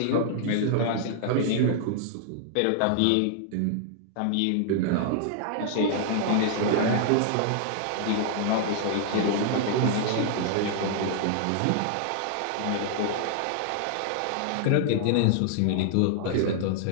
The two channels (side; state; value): both; different; correlation -0.01